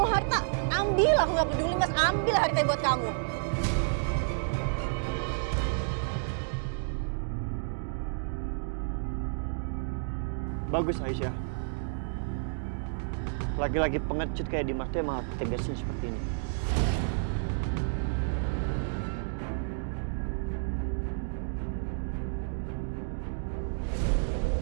harta? Ambil, aku gak peduli, Mas. Ambil harta buat kamu. Bagus Aisyah. Lagi-lagi pengecut kayak Dimas tuh emang harus tegasin seperti ini.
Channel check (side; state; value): left; silent; digital silence